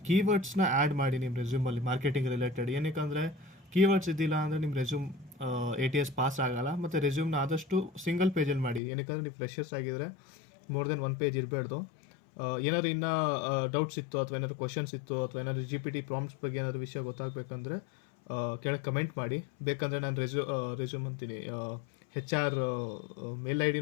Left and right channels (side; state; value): right; drops out; at 8.8 s